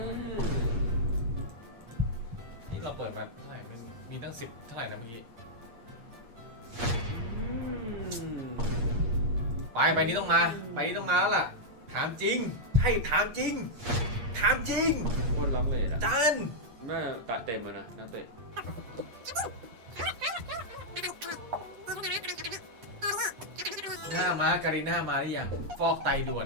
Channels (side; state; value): left; late; 8.5 ms